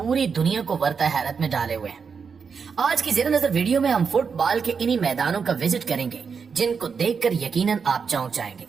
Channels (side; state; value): left; quieter; 5.9 dB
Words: दुनिया को वर्ता हैरत में डाले हुए हैं। आज की ज़ेर नज़र वीडियो में हम फुटबॉल के इन्हीं मैदानों का विजिट करेंगे जिनको देखकर यकीनन आप चौंक जाएंगे